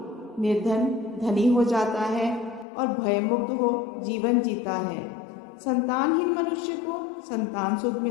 निर्धन धनी हो जाता है और भयमुक्त हो जीवन जीता है। संतानहीन मनुष्य को संतान सुख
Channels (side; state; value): right; drops out; at 2.7 s